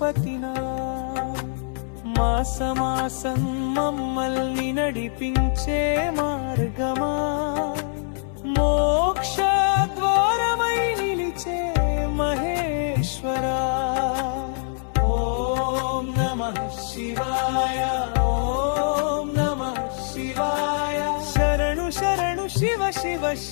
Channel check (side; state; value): right; silent; digital silence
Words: మాసమాసం మమ్మల్ని నడిపించే మార్గమా మోక్ష ద్వారమై నిలిచే మహేశ్వరా ఓం నమః శివాయ ఓం నమః శివాయ శరణు శరణు శివ శివ